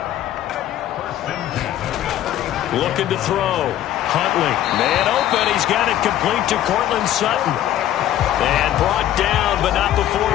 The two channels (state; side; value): quieter; right; 12.3 dB